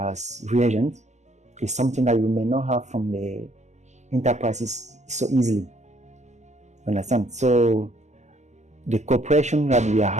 reagents is something that you may not have from the enterprises so easily. You understand? So the cooperation that we are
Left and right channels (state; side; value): late; left; 0.33 ms